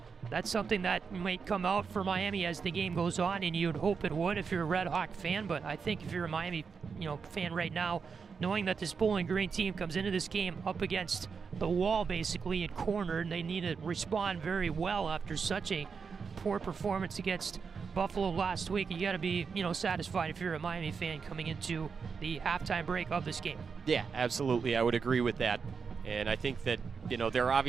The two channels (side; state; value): left; quieter; 5.6 dB